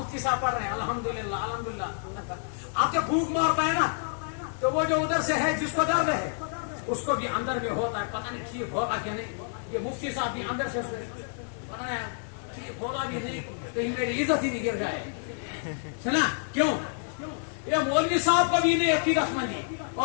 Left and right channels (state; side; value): silent; right; digital silence